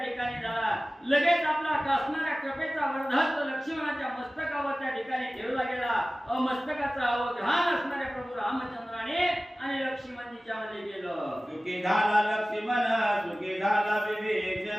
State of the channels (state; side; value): normal; both; correlation 0.97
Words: झाला. लगेच आपला असणाऱ्या कृपेचा वरदहस्त लक्ष्मणाच्या मस्तकावर त्या ठिकाणी ठेवला गेला. मस्तकाचा अवधान असणाऱ्या प्रभू रामचंद्राने आणि लक्ष्मणजीच्या मध्ये गेलं. सुखी झाला लक्ष्मण सुखी झाला